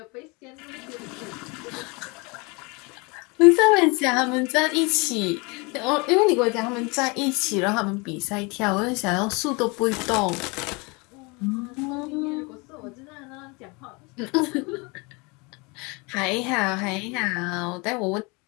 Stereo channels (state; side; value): quieter; right; 28.3 dB